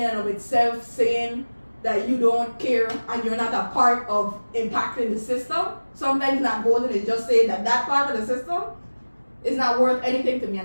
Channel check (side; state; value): both; inverted; correlation -1.00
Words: and of itself saying that you don't care and you're not a part of impacting the system. Sometimes not voting is just saying that that part of the system is not worth anything to me